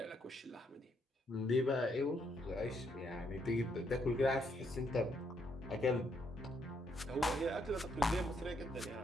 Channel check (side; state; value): both; normal; correlation 0.74